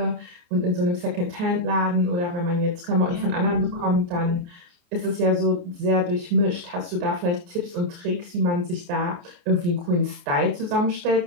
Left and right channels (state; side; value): late; left; 29 ms